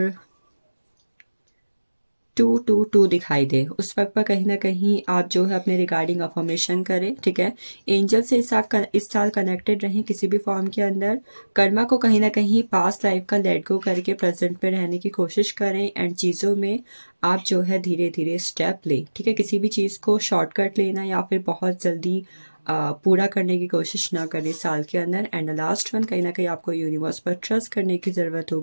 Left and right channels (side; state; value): both; inverted; correlation -1.00